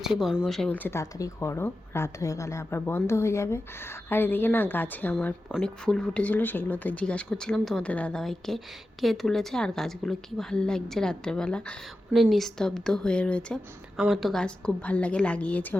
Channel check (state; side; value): normal; both; correlation 0.92